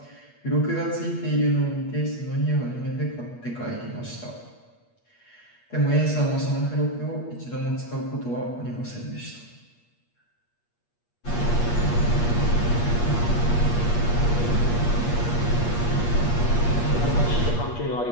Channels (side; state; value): right; late; 8.4 ms